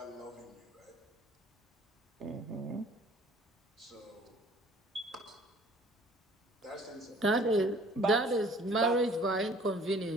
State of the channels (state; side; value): normal; both; correlation 0.53